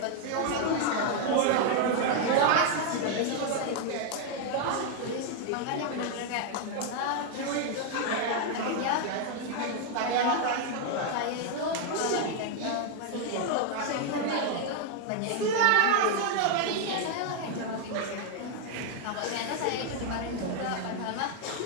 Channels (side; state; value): both; different; correlation 0.00